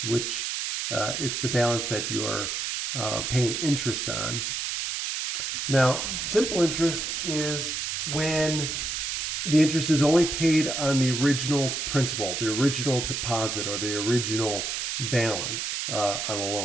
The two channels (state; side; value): noise; right; hiss, 2 dB below the sound